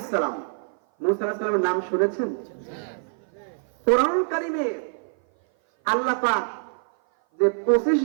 সালাম মুসা আলাইহিস সালামের নাম শুনেছেন কোরআন কারীমে আল্লাহ পাক যে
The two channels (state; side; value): silent; left; 57 dB below the other